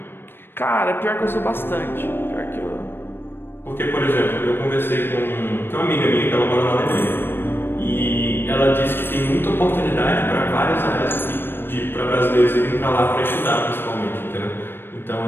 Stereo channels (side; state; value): right; late; 0.10 ms